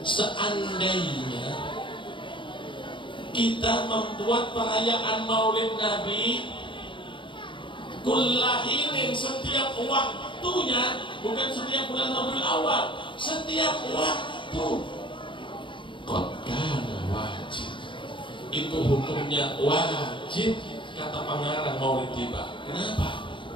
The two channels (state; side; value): late; right; 0.24 ms